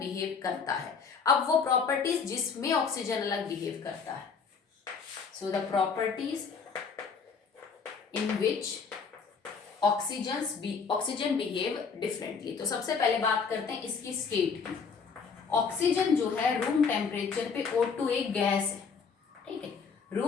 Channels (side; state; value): right; quieter; 5.6 dB